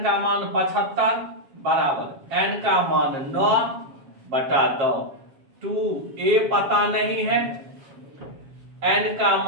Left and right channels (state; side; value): late; left; 7.3 ms